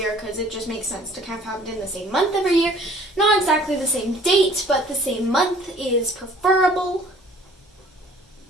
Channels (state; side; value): normal; both; correlation 0.54